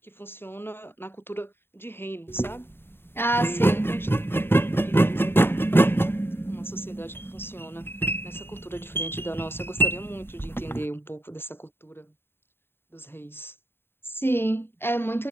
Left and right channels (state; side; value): late; right; 0.11 ms